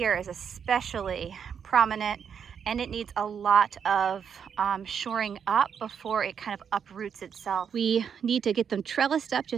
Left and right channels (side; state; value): left; quieter; 7.4 dB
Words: is especially prominent, and it needs a lot of shoring up before it kind of uproots itself. We need to get them trellised up